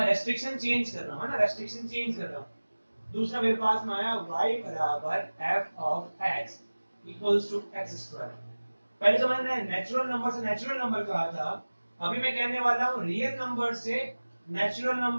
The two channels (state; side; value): inverted; both; correlation -1.00